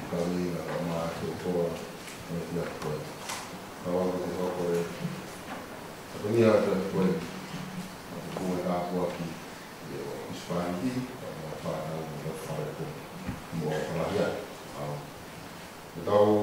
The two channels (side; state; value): both; identical; correlation 1.00